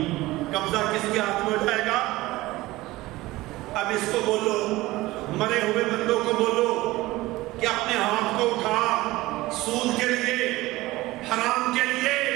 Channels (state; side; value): quieter; left; 18.8 dB